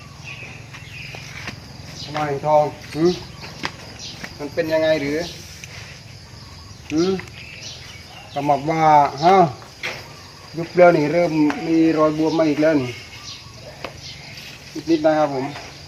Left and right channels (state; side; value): identical; both; correlation 1.00